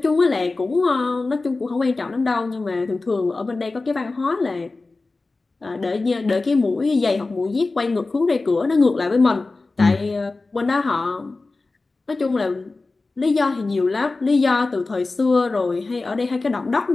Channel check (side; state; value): right; quieter; 3.5 dB